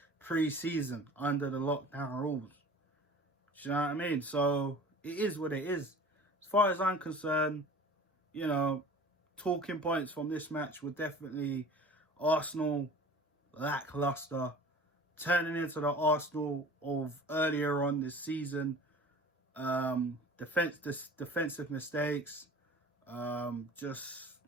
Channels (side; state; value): both; normal; correlation 0.42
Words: pre-season under the lockdown rules. Do you know what I mean? So it is what it is. As far as I'm concerned, talking points from this match were definitely Arsenal lackluster, turning into the Arsenal of earlier on this season. Defensive mistakes, just